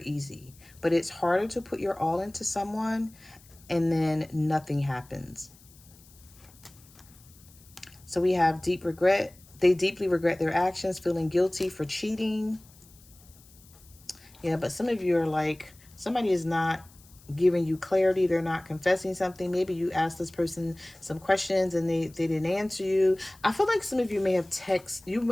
but it's harder to put your all into someone and then nothing happens. So we have deep regret. They deeply regret their actions, feeling guilty for cheating. Yeah, but some of you are like, somebody is not giving you clarity. They're not confessing something. Maybe you asked this person some questions and they didn't answer you. I feel like some of you may have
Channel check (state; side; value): noise; left; hiss, 25 dB below the sound